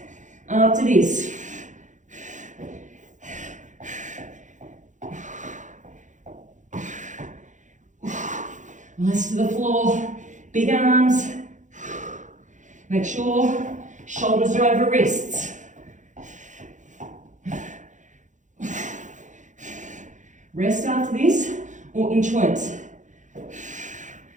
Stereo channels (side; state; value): left; late; 0.36 ms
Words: after this. Eyes to the floor, big arms. Make sure shoulders are over wrists. Rest after this, or inchworms.